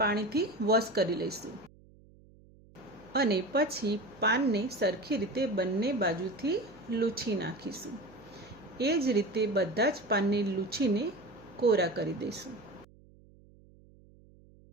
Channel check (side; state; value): right; noise; hum, 25 dB below the sound